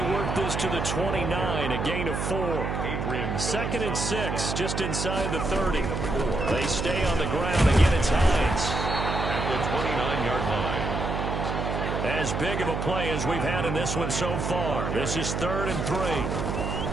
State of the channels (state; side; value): noise; right; hum, 2 dB below the sound